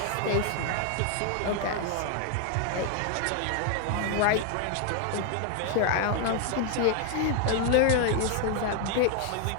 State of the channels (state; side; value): different; both; correlation 0.00